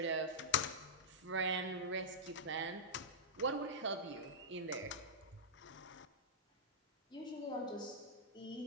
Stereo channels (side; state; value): both; normal; correlation -0.10